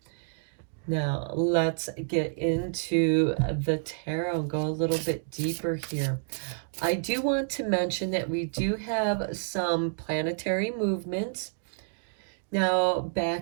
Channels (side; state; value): left; silent; digital silence